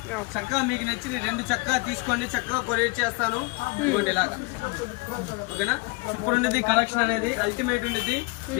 చక్కగా మీకు నచ్చిన 2 చక్కగా తీసుకోండి, చక్కగా కొరియర్ చేస్తాను. ఇదిగోండి ఇలాగా. ఓకేనా. సూపర్ ఉండేది కలెక్షన్ అనేది, అల్టిమేట్ ఉండేది.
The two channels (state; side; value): quieter; right; 27.6 dB